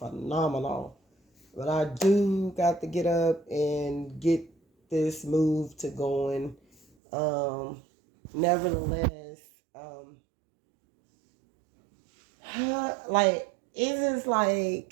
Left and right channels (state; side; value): drops out; left; at 6.9 s